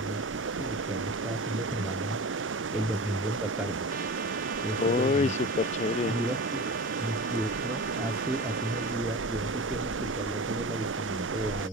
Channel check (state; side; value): normal; both; correlation 0.32